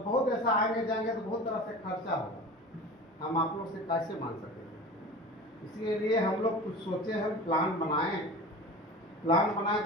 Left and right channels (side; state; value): both; normal; correlation 0.35